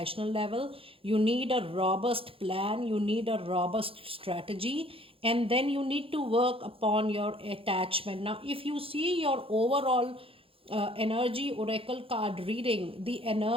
level, you need a robust plan, you need a robust strategy, and then you need to work upon your attachment. Now, if you see your overall energy oracle card reading, the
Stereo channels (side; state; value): left; late; 0.27 ms